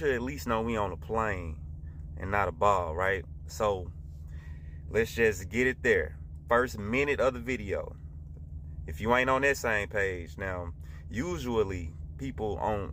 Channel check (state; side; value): identical; both; correlation 1.00